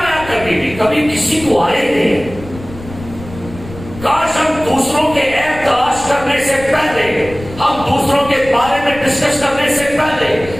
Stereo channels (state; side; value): noise; left; rumble, 15 dB below the sound